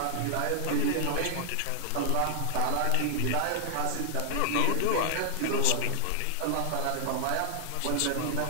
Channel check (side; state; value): both; different; correlation 0.00